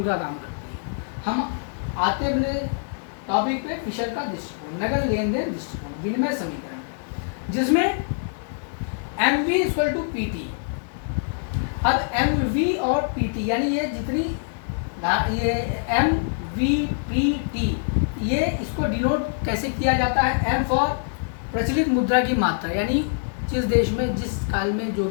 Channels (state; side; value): silent; right; 62 dB below the other